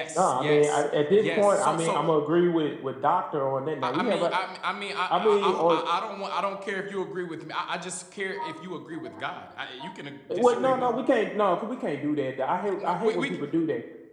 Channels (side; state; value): both; identical; correlation 1.00